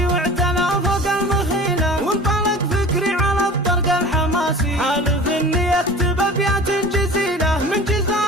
واعتلى فوق المخيلة، وانطلق فكري على الطرق الحماسي، حالف اني اكتب ابيات جزيلة من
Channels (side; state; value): both; normal; correlation 0.39